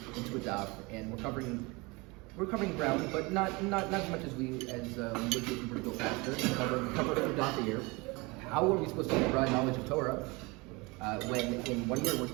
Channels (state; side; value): quieter; left; 25.7 dB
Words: daf, and we're covering we're covering ground, but not as much as we would if we were to go faster. Cover a few dots a year. How are we supposed to have broad knowledge of Torah when in 1 year we're